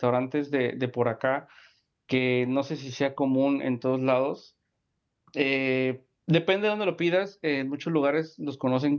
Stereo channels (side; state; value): both; identical; correlation 1.00